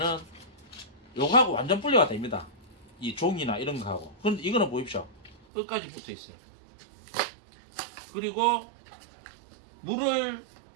요거하고 완전 분리가 됩니다. 이 종이나 이런 거하고. 근데 이거는 보십시오. 끝까지 붙어 있어요. 그리고 물을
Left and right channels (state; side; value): drops out; left; at 5.4 s